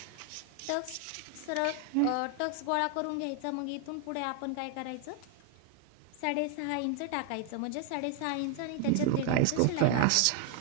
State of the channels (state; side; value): different; both; correlation 0.00